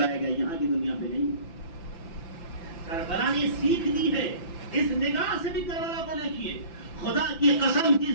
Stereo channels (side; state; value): right; late; 5.9 ms